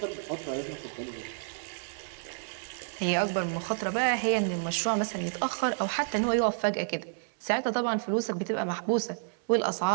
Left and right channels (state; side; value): silent; left; 58 dB below the other